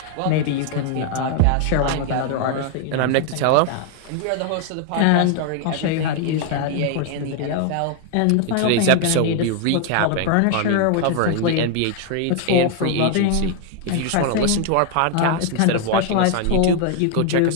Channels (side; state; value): both; different; correlation 0.00